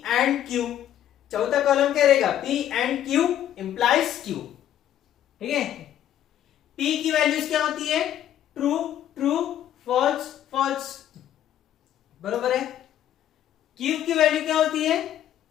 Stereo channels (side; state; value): right; quieter; 11.2 dB